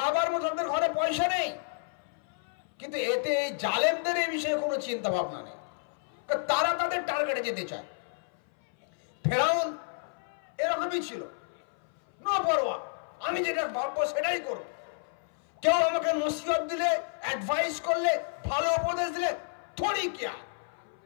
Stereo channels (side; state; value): right; silent; 58 dB below the other